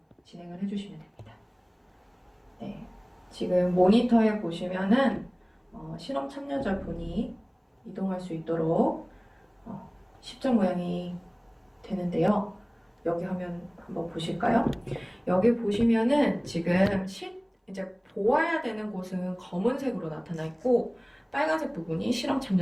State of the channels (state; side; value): identical; both; correlation 1.00